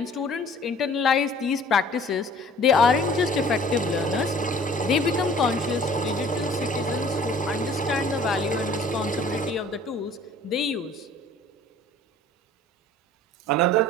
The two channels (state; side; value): normal; both; correlation 0.51